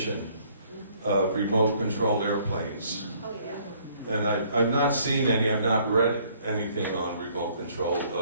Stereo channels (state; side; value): inverted; both; correlation -0.62